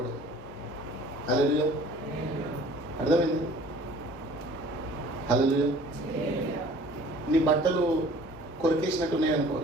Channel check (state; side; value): normal; both; correlation 0.50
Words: హల్లెలూయా. అర్థమైంది? హల్లెలూయా. నీ బట్టలు కొరికేసినట్టు ఉన్నాయనుకో,